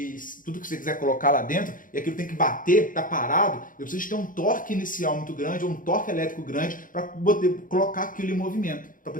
tudo que você quiser colocar lá dentro, e aquilo tem que bater, tá parado, eu preciso ter um torque inicial muito grande, ou um torque elétrico grande, para poder colocar aquilo em movimento, para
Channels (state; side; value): late; right; 0.39 ms